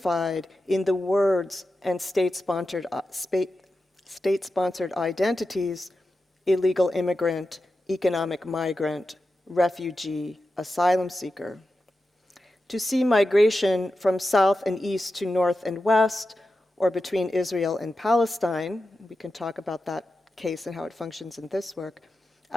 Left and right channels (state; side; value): normal; both; correlation 0.91